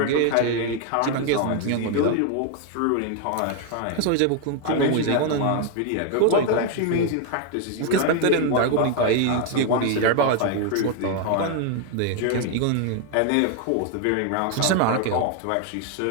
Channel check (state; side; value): different; both; correlation 0.01